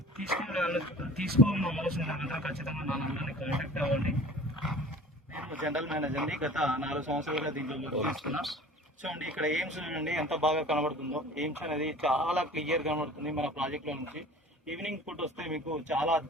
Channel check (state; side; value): normal; both; correlation 0.43